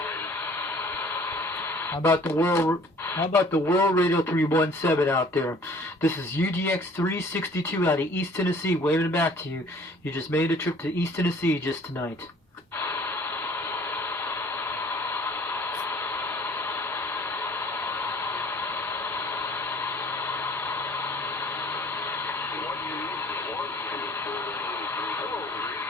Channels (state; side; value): normal; both; correlation 0.53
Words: How about the World Radio 317 out there? This is UGX 362 out of East Tennessee, waving it back to you. You just made a trip to East Tennessee just tonight.